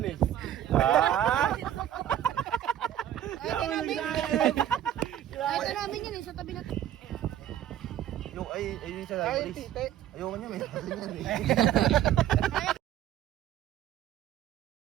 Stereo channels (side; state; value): left; quieter; 11.4 dB